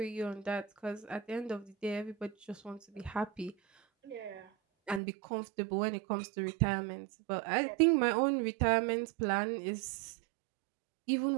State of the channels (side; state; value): left; drops out; at 5.0 s